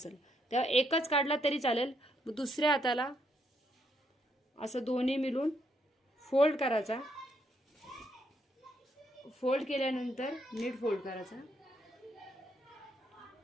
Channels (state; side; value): normal; both; correlation 0.75